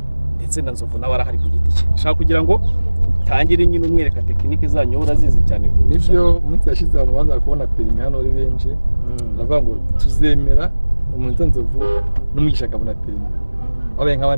ndetse na Nzovu nawe arahari ku giti cye. Nshaka kugira ngo tangire nyine umwereka tekinike zanyu urazizi cyane. Nivyo umunsi yashize abantu baza kubona perime hano ari benshi. Baravuga ngo tuzemera umuntu Nzovu n'umugisha akabona perime. Wabaye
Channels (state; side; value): inverted; both; correlation -1.00